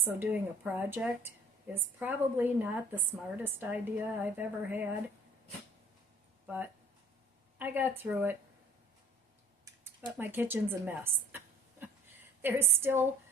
doing a project is probably not the smartest idea I've ever had, but I got through it. But my kitchen's a mess.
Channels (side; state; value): both; normal; correlation 0.52